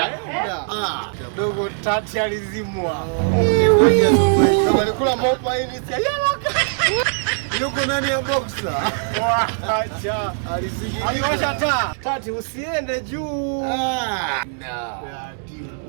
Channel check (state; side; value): silent; left; 65 dB below the other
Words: Dogo Tati alizimwa. Alikula mopa hii si yuko ndani ya boxer. Acha. Aliwasha taa. Tati usiende juu.